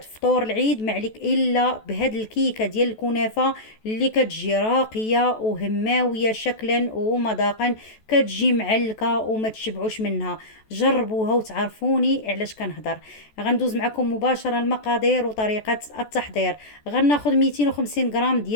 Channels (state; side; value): late; right; 14 ms